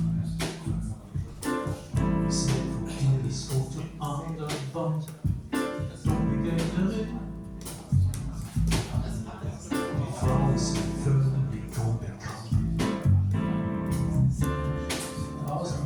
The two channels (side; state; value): both; identical; correlation 1.00